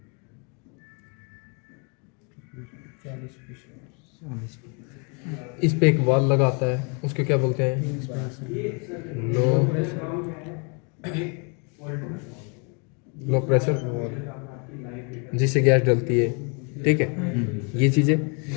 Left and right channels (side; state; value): right; quieter; 35.4 dB